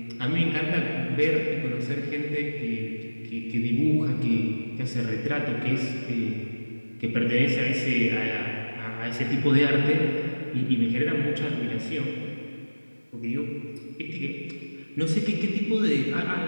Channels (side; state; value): both; inverted; correlation -1.00